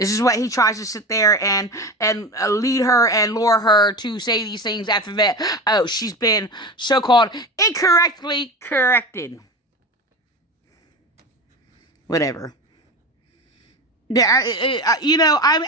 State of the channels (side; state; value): both; normal; correlation 0.27